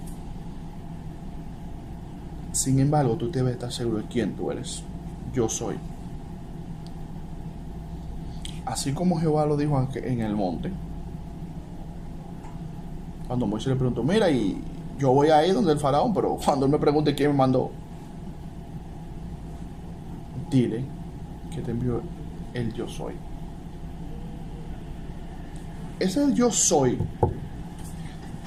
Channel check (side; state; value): both; identical; correlation 1.00